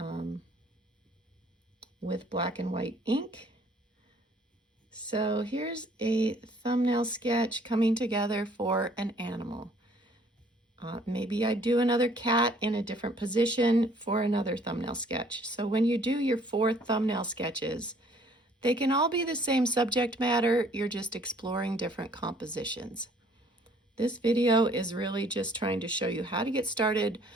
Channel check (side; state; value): both; normal; correlation 0.59